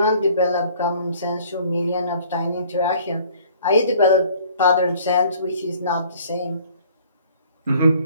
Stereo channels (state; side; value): inverted; both; correlation -0.55